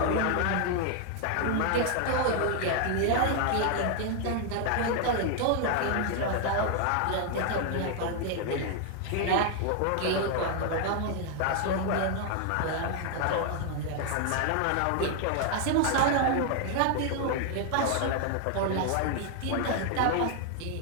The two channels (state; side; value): different; both; correlation 0.00